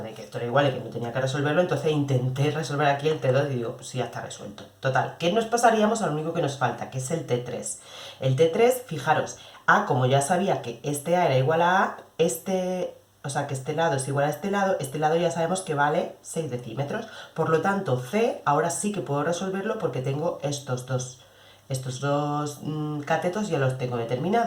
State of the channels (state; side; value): identical; both; correlation 1.00